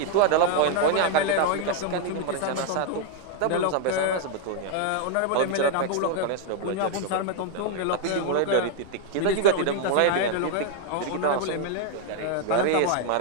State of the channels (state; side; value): different; both; correlation 0.00